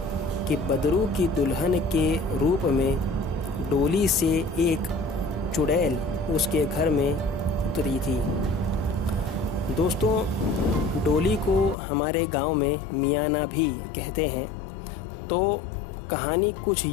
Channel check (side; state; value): right; drops out; at 11.8 s